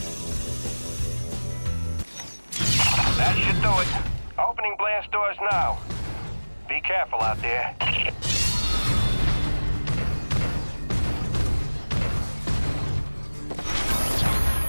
That should do it. Opening blast doors now. Be careful out there.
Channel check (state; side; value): inverted; both; correlation -1.00